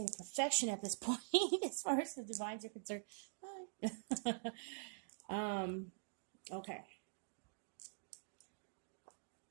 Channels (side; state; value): left; silent; digital silence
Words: of perfection at this point, as far as the divines are concerned. Okay.